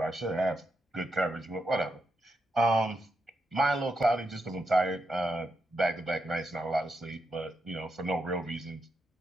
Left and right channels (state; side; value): normal; both; correlation 0.84